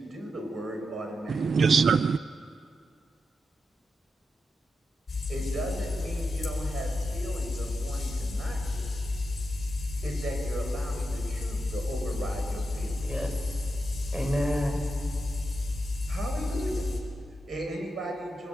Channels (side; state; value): both; normal; correlation 0.87